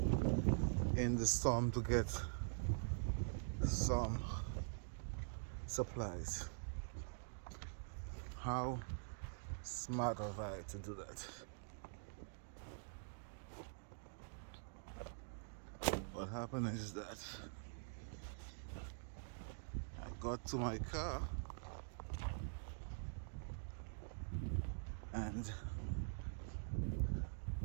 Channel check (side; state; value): left; silent; digital silence